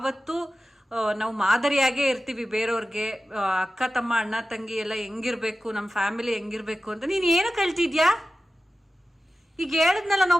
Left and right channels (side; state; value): both; normal; correlation 0.94